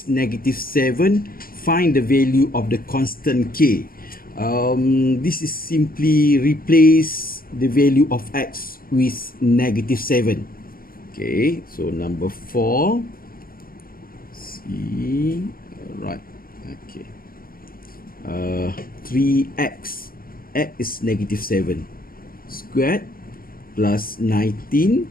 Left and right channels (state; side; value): late; right; 0.42 ms